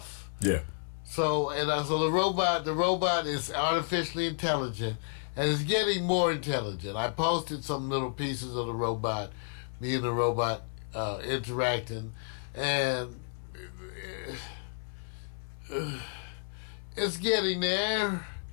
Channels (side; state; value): right; silent; 57 dB below the other